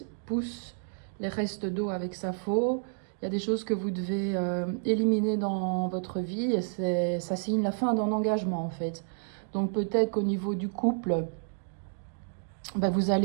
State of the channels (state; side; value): silent; left; digital silence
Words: pousse les restes d'eau avec sa faux. Il y a des choses que vous devez éliminer dans votre vie et ça signe la fin d'un engagement en fait. Donc peut-être qu'au niveau du couple, ben, vous